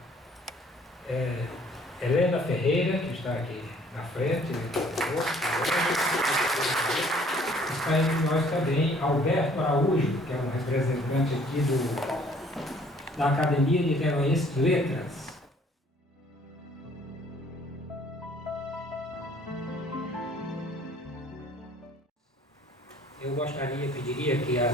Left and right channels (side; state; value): both; normal; correlation 0.58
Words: Helena Ferreira, que está aqui na frente. Está entre nós também Alberto Araújo, que é um representante aqui da Academia Niteroense de Letras. Eu pediria que